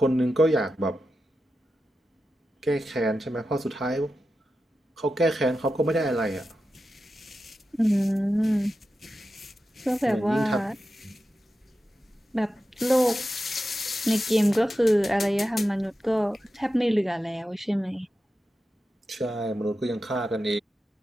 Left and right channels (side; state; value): both; normal; correlation 0.91